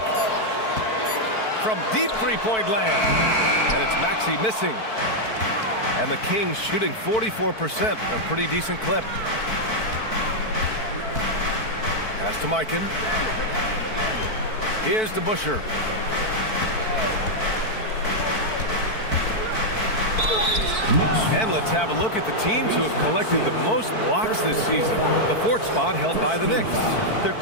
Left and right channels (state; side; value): late; right; 4.5 ms